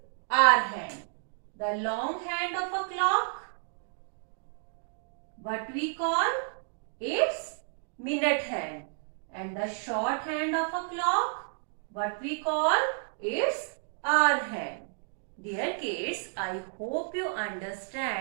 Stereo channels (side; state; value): left; silent; digital silence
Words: hour hand. The long hand of a clock, what we call? It's minute hand. And the short hand of a clock, what we call? It's hour hand. Dear kids, I hope you